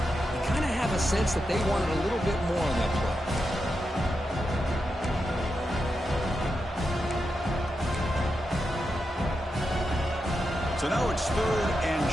kind of have a sense that they wanted a little bit more on that play. So now it's 3rd and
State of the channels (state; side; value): normal; both; correlation 0.87